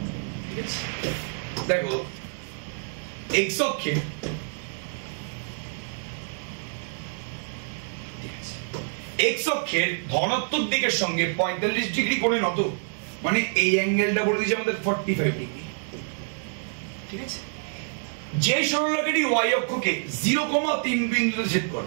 দেখো এক্স অক্ষের ধনাত্মক দিকের সঙ্গে 45 ডিগ্রি কোণে নত, মানে এই অ্যাঙ্গেলটা বলে দিয়েছে আমাদের 45 ডিগ্রি। ঠিক আছে? যে সরলরেখাটি ওয়াই অক্ষকে 0,3 বিন্দুতে ছেদ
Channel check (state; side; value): silent; left; 60 dB below the other